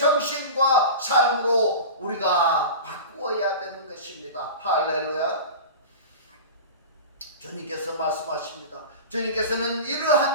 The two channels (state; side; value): inverted; both; correlation -0.31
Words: 삶으로 우리가 바꾸어야 되는 것입니다. 할렐루야. 주님께서 말씀하십니다. 주님께서는